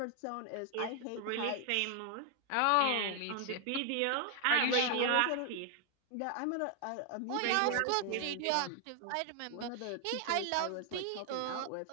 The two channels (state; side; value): different; both; correlation 0.00